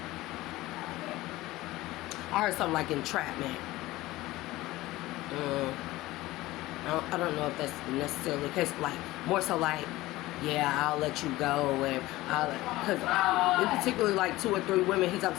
heard something like entrapment. I don't know if that's necessarily the case. Like, more so like, yeah, I'll let you go, and because in particularly like 2 or 3 women he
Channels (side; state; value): right; quieter; 18.0 dB